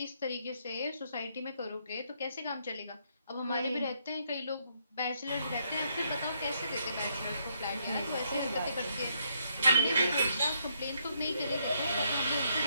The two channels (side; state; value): both; inverted; correlation -0.74